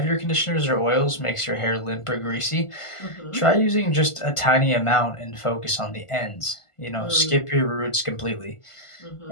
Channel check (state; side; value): late; right; 1.5 ms